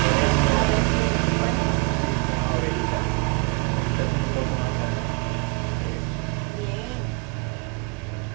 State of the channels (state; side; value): quieter; left; 28.0 dB